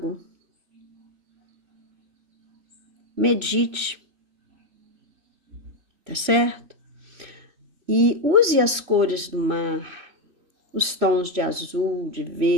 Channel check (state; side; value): late; left; 2.9 ms